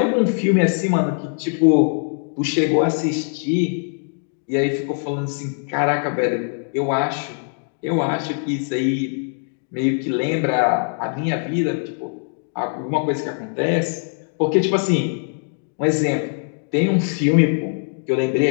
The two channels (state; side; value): silent; right; 56 dB below the other